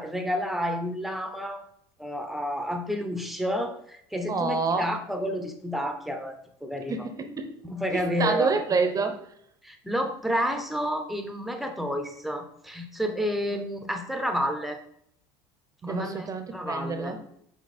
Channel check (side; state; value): both; normal; correlation 0.66